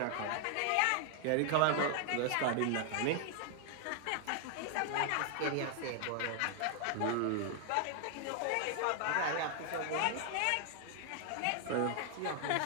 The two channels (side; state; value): both; different; correlation 0.00